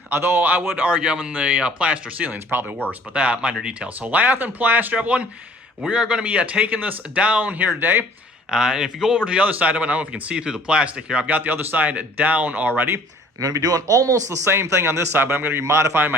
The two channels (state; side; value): normal; both; correlation 0.54